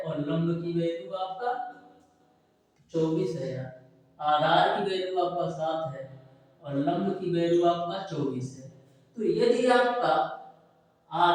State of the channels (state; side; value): identical; both; correlation 1.00